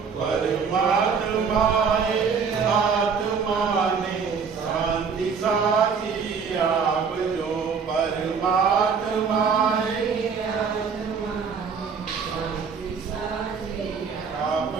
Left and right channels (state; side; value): quieter; left; 5.9 dB